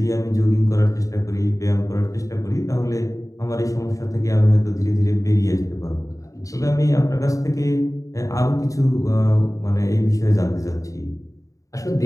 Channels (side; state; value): right; late; 0.16 ms